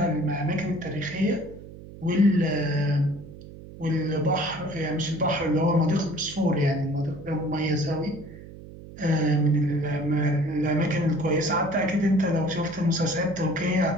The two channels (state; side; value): noise; right; hum, 16 dB below the sound